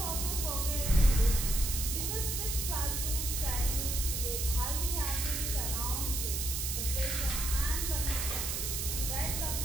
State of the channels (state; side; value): noise; right; hiss, 1 dB below the sound